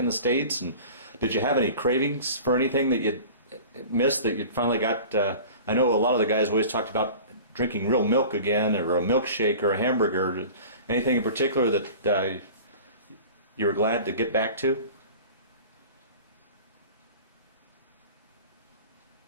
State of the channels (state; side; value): inverted; both; correlation -0.40